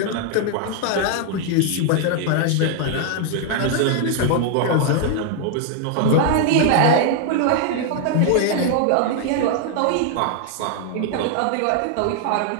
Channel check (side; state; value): both; different; correlation 0.00